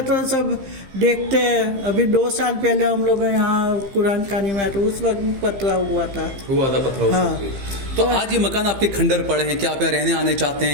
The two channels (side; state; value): left; late; 15 ms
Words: तो सब देखते हैं। अभी 2 साल पहले हम लोग यहाँ कुरान खानी में आए तो उस वक्त पतरा हुआ था पतरा। हाँ। तो आज ये मकान आपके खंडर पड़े हैं, क्या आप यहाँ रहने आने चाहते